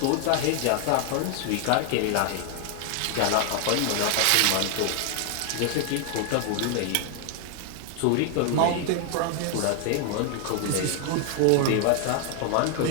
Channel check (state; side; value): different; both; correlation 0.00